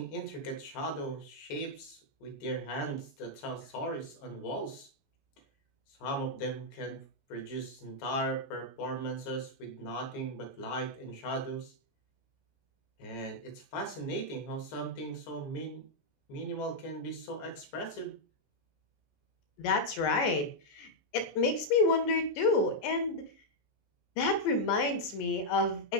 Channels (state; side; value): late; right; 14 ms